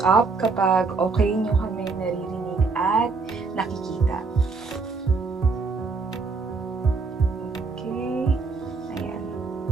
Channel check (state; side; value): quieter; left; 4.3 dB